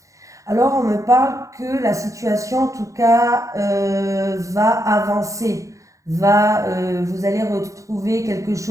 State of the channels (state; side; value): late; left; 0.15 ms